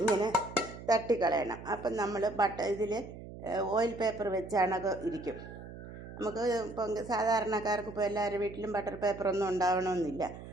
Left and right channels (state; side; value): noise; right; hum, 13 dB below the sound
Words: ഇങ്ങനെ തട്ടിക്കളയണം. അപ്പം നമ്മൾ ഇതിൽ ഓയിൽ പേപ്പർ വെച്ചാണൊക്കെ ഇരിക്കും. നമുക്ക് ഇപ്പം സാധാരണക്കാർക്ക് ഇപ്പോൾ എല്ലാവരുടെ വീട്ടിലും ബട്ടർ പേപ്പറൊന്നും ഉണ്ടാവണമെന്നില്ല.